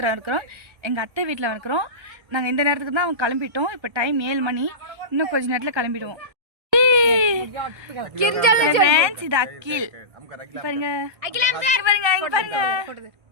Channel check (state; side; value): late; left; 1.2 ms